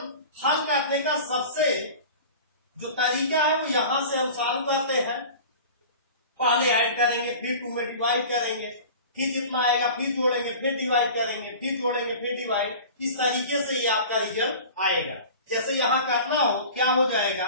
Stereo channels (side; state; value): both; inverted; correlation -0.38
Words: हल करने का सबसे जो तरीका है वो यहां से हम सॉल्व करते हैं। पहले ऐड करेंगे, फिर 2 में डिवाइड करेंगे, फिर जितना आएगा फिर जोड़ेंगे, फिर डिवाइड करेंगे, फिर जोड़ेंगे, फिर डिवाइड। इस तरीके से ये आपका रिजल्ट आएगा। जैसे यहां करना हो, क्या हो